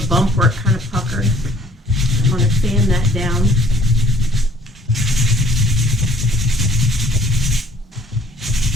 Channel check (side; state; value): both; normal; correlation 0.56